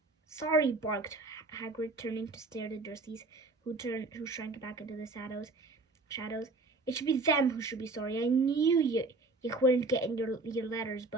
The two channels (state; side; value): quieter; left; 3.4 dB